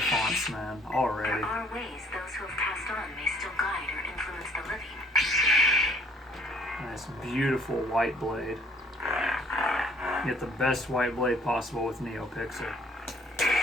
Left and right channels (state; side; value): normal; both; correlation 0.60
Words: fonts, man, already. There are ways those who have passed on may still guide or influence the living. Nice, beautiful white blade. Get the best white blade possible with NeoPixel.